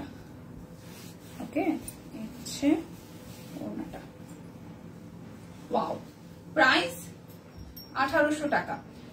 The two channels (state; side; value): identical; both; correlation 1.00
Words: ওকে। এই হচ্ছে ওড়নাটা। ওয়াও, প্রাইস 1800 টাকা।